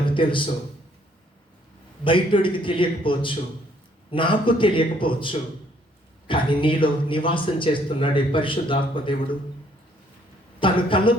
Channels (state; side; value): normal; both; correlation 0.65